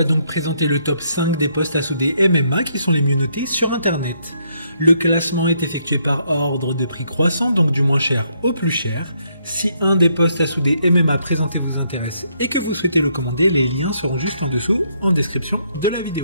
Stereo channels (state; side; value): inverted; both; correlation -0.73